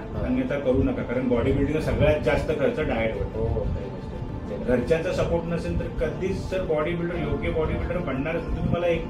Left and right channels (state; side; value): identical; both; correlation 1.00